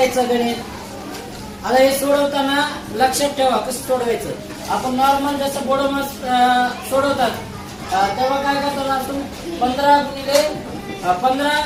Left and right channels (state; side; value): identical; both; correlation 1.00